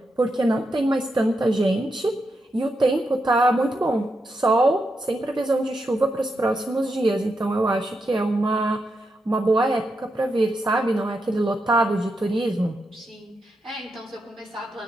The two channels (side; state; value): both; normal; correlation 0.85